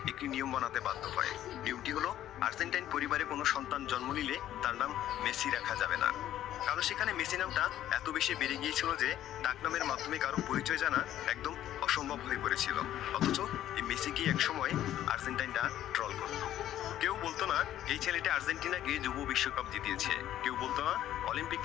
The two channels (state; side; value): quieter; right; 12.2 dB